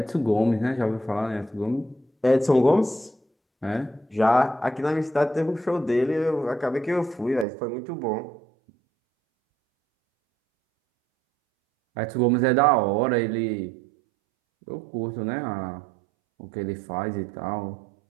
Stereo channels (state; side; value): drops out; left; at 7.5 s